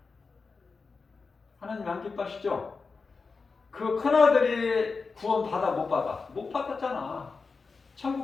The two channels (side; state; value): right; quieter; 4.5 dB